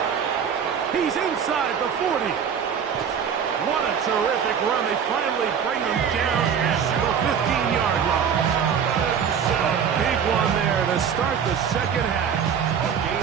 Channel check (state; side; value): quieter; left; 7.5 dB